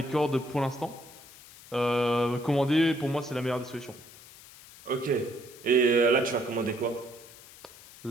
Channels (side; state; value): left; noise; hiss, 20 dB below the sound